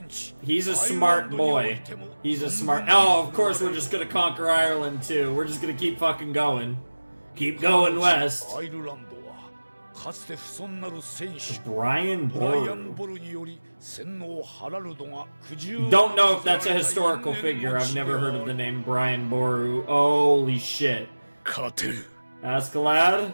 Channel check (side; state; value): both; inverted; correlation -1.00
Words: 地。 He's a smart boy. He's a smart... Oh, of course we're just gonna conquer Ireland too. We're just gonna keep fucking going. Keep going west. アイルランドはかつて不遜なる戦士 Brian ブライアン・ Boru. ボルにより洗脳ハラルドが苦渋 Don't know if that's a historical figure. I've never heard of the name Brian Boru. Holy shit. 勝てる。 Askeladd?